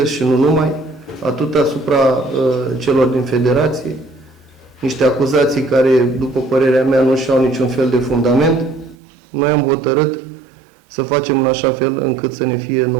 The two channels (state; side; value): drops out; left; at 9.0 s